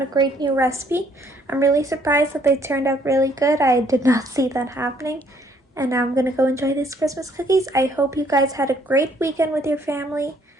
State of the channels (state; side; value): normal; both; correlation 0.65